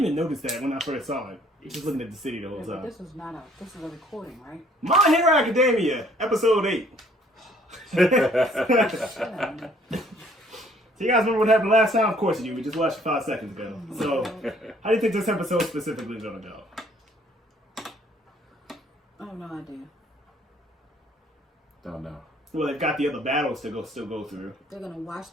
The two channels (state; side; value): normal; both; correlation 0.60